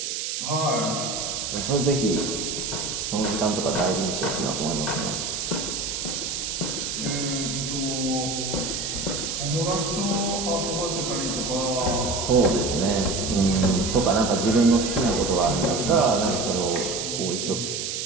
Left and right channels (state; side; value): noise; right; hiss, 3 dB below the sound